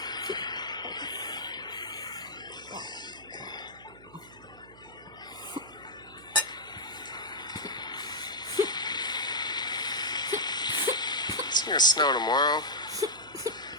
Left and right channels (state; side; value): noise; right; hum, 21 dB below the sound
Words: It's gonna snow tomorrow.